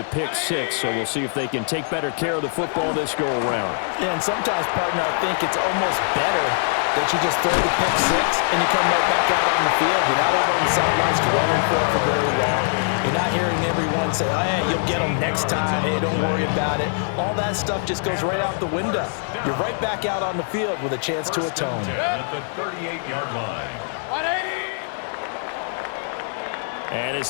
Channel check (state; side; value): silent; right; digital silence